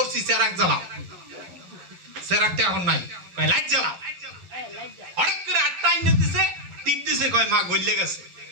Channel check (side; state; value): left; late; 11 ms